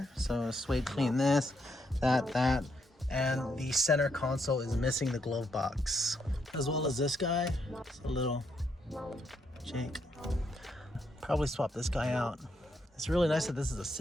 So suede clean this, that, and the center console is missing the glove box, as well as this guy. It's a little Jake. Probably swap this guy out. It's really nice that this is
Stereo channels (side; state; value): both; normal; correlation 0.77